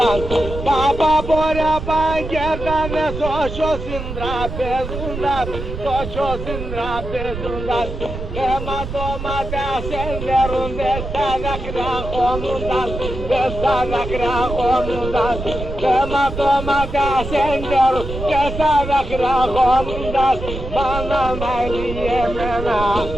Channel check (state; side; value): noise; right; rumble, 7 dB below the sound